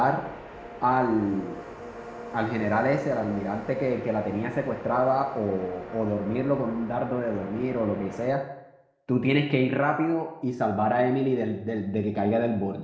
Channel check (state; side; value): identical; both; correlation 1.00